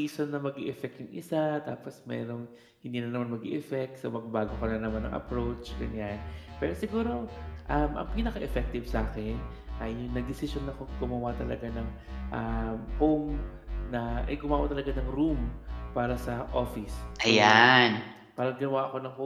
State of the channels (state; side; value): identical; both; correlation 1.00